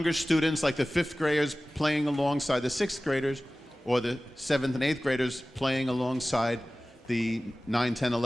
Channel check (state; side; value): normal; both; correlation 0.97